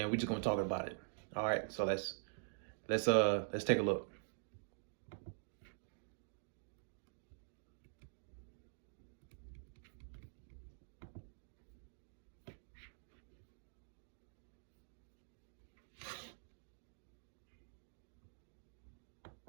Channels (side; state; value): left; silent; digital silence